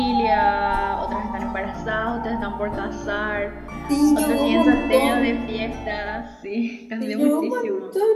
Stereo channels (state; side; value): identical; both; correlation 1.00